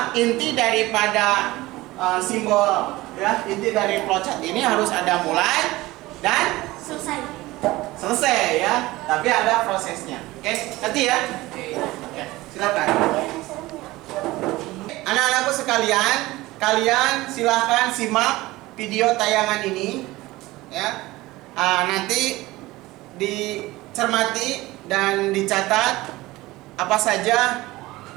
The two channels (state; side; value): quieter; left; 19.1 dB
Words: inti daripada simbol ya, inti dari flowchart ini harus ada mulai dan selesai ya, tapi ada prosesnya. Oke, ngerti ya? Oke, silakan. Anak-anakku sekalian, kalian silakan simak video tayangan ini ya. Nanti dicermati dan dicatat apa saja